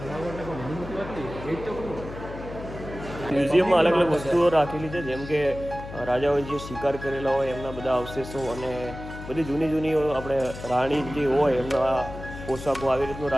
મ્યુઝિયમમાં અલગ અલગ વસ્તુઓ રાખેલી છે, જેમ કે રાજાઓએ જે શિકાર કરેલા હોય એમના બધા અવશેષો અને બધી જૂની જૂની આપણે રાણી જે હોય એમના પોશાકો, આવી રીતનું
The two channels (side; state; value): left; noise; hum, 11 dB below the sound